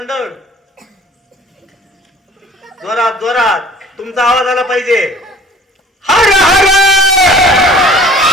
जोरात जोरात तुमचा आवाज आला पाहिजे. हर हर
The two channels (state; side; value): normal; both; correlation 0.48